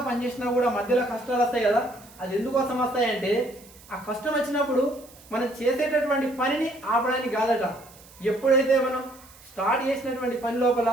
పనిచేసినా కూడా మధ్యలో కష్టాలు వస్తాయి కదా. అది ఎందుకోసం వస్తాయంటే ఆ కష్టం వచ్చినప్పుడు మనం చేసేటటువంటి పనిని ఆపడానికి కాదట. ఎప్పుడైతే మనం స్టార్ట్ చేసినటువంటి పని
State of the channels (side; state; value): right; noise; hiss, 23 dB below the sound